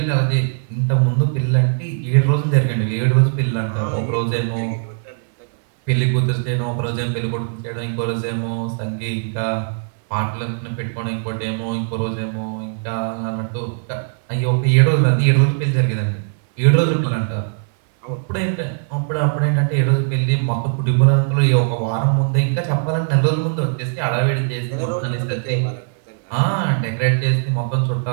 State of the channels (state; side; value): silent; left; 61 dB below the other